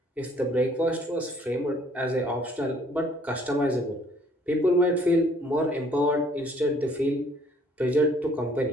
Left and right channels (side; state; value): both; normal; correlation 0.60